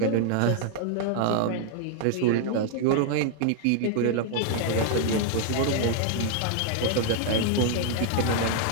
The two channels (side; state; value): both; different; correlation 0.00